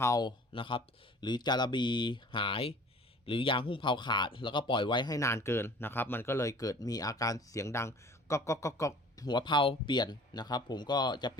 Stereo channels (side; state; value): both; normal; correlation 0.47